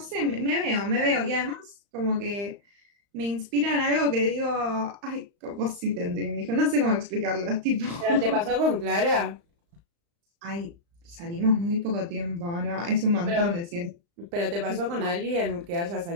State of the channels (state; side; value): late; left; 35 ms